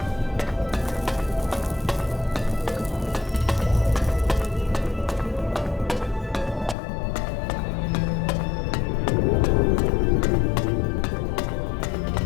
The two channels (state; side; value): drops out; right; at 6.8 s